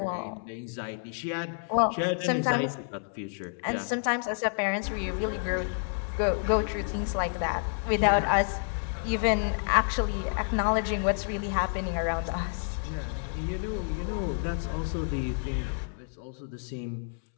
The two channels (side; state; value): right; silent; 58 dB below the other